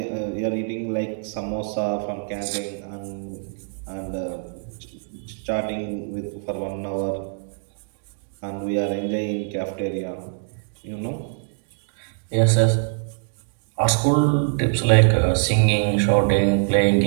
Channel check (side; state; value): left; silent; digital silence